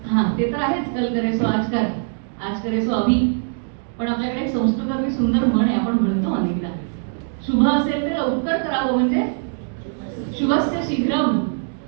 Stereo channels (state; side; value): silent; left; digital silence